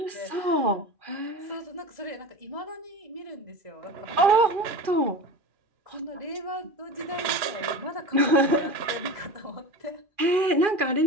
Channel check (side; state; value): left; late; 2.4 ms